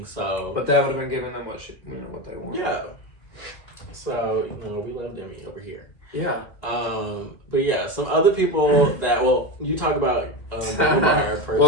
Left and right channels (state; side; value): late; right; 2.1 ms